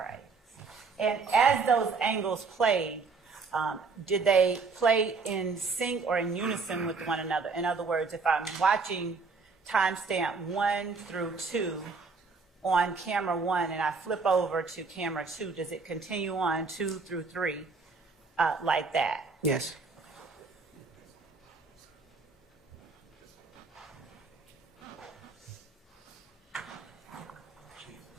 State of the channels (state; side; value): quieter; left; 4.5 dB